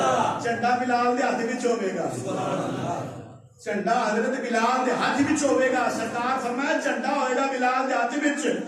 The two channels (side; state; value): both; identical; correlation 1.00